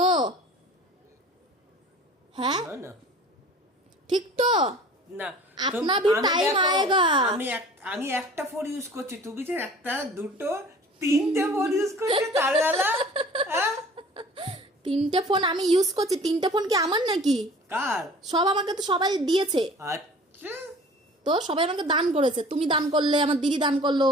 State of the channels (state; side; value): normal; both; correlation 0.46